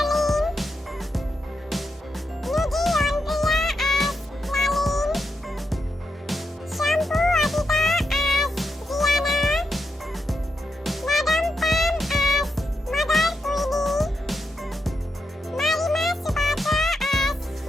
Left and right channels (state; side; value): normal; both; correlation 0.84